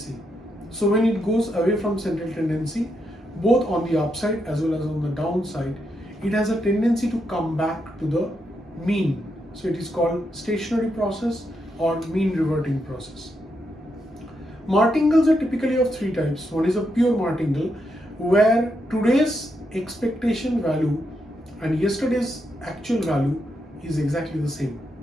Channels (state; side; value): normal; both; correlation 0.82